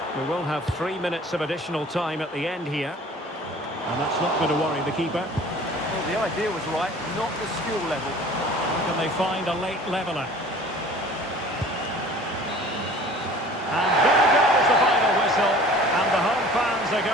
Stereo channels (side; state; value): both; normal; correlation 0.46